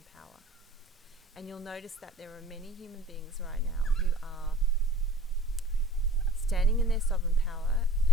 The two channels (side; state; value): both; normal; correlation 0.45